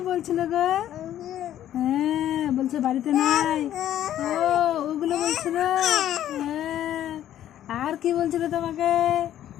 বলছিল গো? হ্যাঁ বলছে বাড়িতে নাই। ও ওগুলো বলছিল। হ্যাঁ আর কি বলছিল তোমাকে?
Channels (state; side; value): quieter; right; 11.7 dB